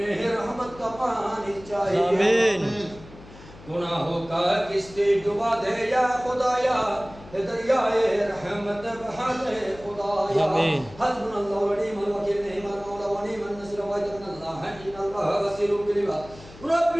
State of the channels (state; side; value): noise; left; hum, 19 dB below the sound